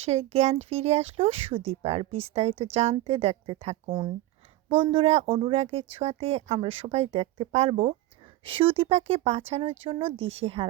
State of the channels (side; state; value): left; quieter; 16.3 dB